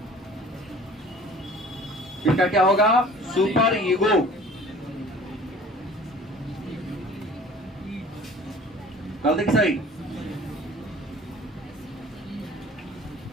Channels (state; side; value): normal; both; correlation 0.47